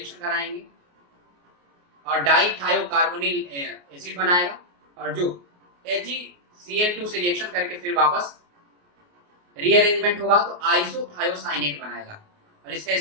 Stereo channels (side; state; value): left; late; 28 ms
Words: कराएंगे और डाइथायोकार्बोनिल एसिड बनाएगा, और जो HgCl2 से रिएक्शन करके फिर वापस रीअरेंजमेंट होगा तो आइसोथायोसाइनेट बनाएगा। और इसका